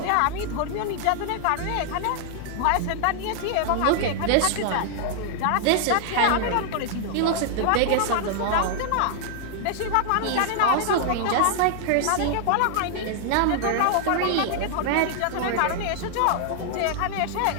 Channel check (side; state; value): both; different; correlation -0.01